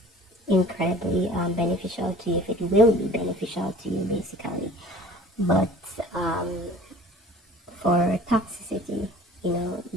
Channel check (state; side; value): normal; both; correlation 0.47